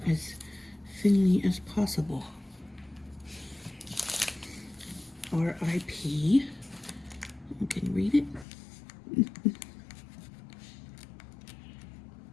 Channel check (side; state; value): right; drops out; at 8.5 s